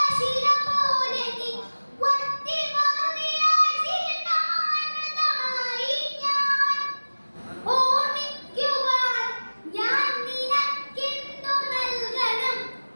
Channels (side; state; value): both; inverted; correlation -1.00